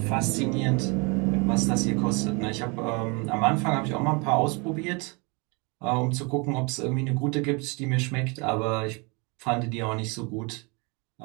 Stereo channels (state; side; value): quieter; left; 30.2 dB